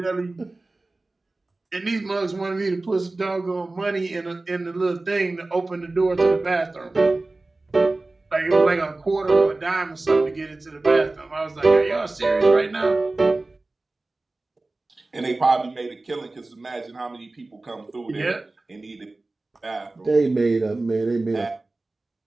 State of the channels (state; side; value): quieter; left; 3.1 dB